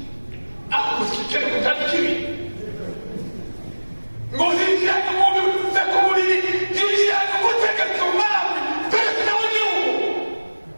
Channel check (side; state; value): both; inverted; correlation -1.00